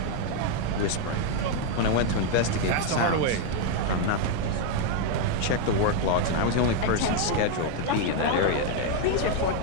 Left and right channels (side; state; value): both; different; correlation 0.01